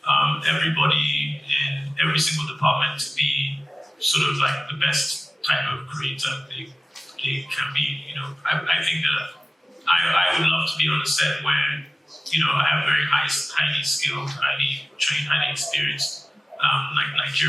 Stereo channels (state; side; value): normal; both; correlation 0.96